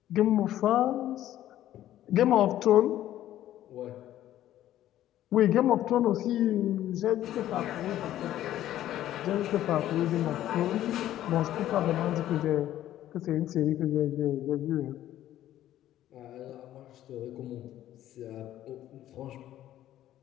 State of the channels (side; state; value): right; quieter; 12.9 dB